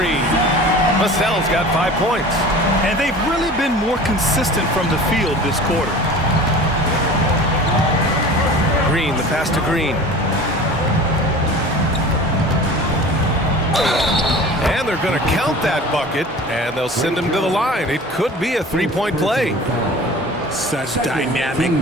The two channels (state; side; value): normal; both; correlation 0.40